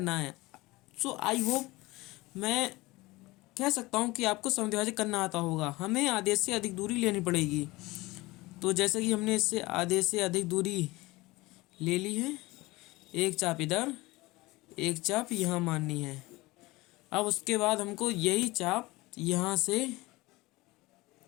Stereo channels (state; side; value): quieter; right; 21.0 dB